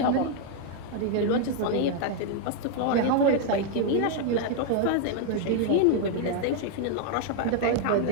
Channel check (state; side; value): different; both; correlation 0.00